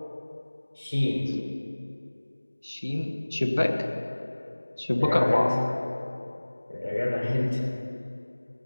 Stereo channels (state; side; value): inverted; both; correlation -1.00